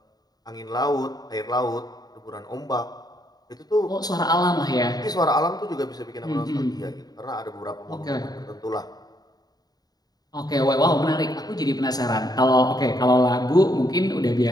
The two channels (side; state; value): right; late; 0.19 ms